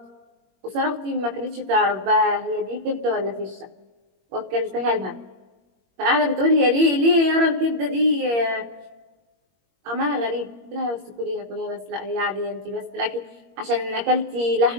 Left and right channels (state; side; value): late; left; 21 ms